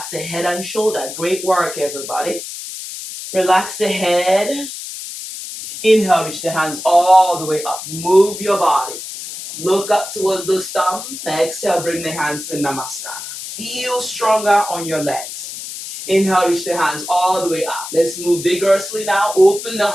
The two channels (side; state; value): left; noise; hiss, 9 dB below the sound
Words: the head and shoulder. Great work, everybody. Relax the head. Inhale, reach the hands all the way up. Move your body. Look up towards the thumb. Exhale, bring the hands in Namaskar. Feel stronger on your legs. Inhale, reach the hands all the way up. Let's move vigorously now. Open the